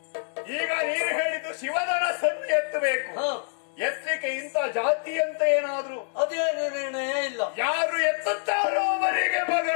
ಈಗ ನೀನು ಹೇಳಿದ್ದು ಶಿವಧನಸ್ಸನ್ನು ಎತ್ತಬೇಕು. ಎತ್ತಲಿಕ್ಕೆ ಇಂಥ ಜಾತಿ ಅಂತ ಏನಾದ್ರು ಅದೇನು ನಿರ್ಣಯ ಇಲ್ಲ. ಯಾರು ಎತ್ತುತ್ತಾರೋ ಅವರಿಗೆ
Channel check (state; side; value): silent; right; digital silence